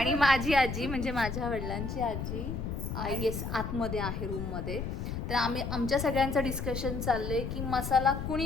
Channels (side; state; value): left; noise; rumble, 4 dB below the sound